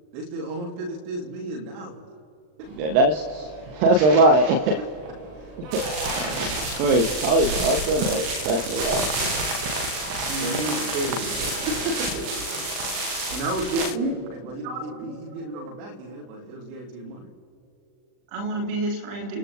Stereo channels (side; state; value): left; late; 39 ms